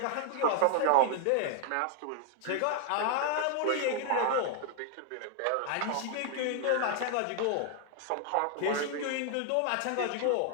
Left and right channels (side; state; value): both; different; correlation 0.00